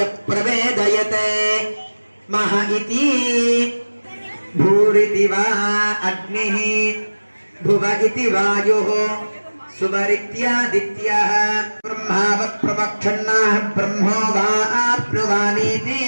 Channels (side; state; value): both; inverted; correlation -1.00